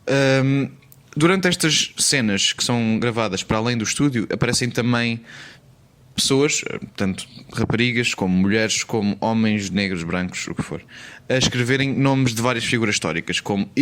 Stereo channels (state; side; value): identical; both; correlation 1.00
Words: Durante estas cenas que são gravadas para além do estúdio, aparecem também pessoas, tanto raparigas como mulheres, como homens, negros, brancos, o que for, a escreverem nomes de várias figuras históricas, como